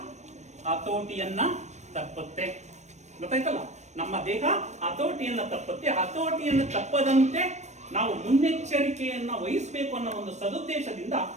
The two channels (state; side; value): late; left; 0.34 ms